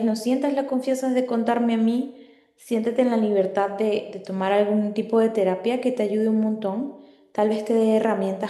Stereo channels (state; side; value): identical; both; correlation 1.00